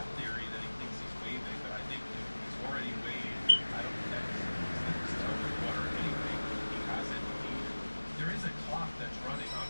theory that he thinks he's waiving, but I think if he's already waived, I don't think that he's dipped his toe in the water anyway. He hasn't there is a clock that's running on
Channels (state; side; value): inverted; both; correlation -1.00